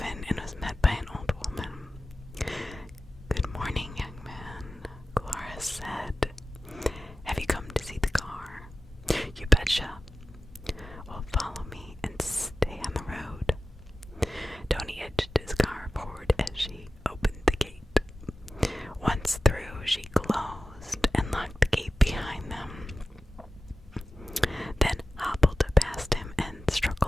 and was met by an old woman. "Good morning, young man," Dolores said. "Have you come to see the car?" "You betcha." "Well, follow me and stay on the road." Tony edged his car forward as she opened the gate. Once through, she closed and locked the gate behind them, then hobbled past him and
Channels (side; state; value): both; normal; correlation 0.94